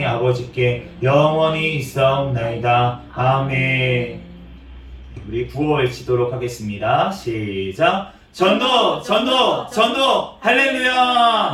아버지께 영원히 있사옵나이다. 아멘. 우리 구호 외치도록 하겠습니다. 시작. 전도 전도 전도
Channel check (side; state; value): both; identical; correlation 1.00